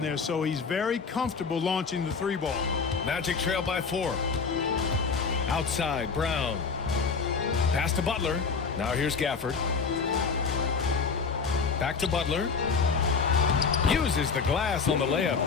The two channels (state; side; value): quieter; right; 5.2 dB